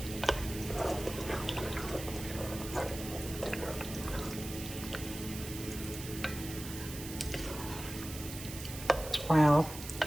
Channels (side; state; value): right; noise; hiss, 10 dB below the sound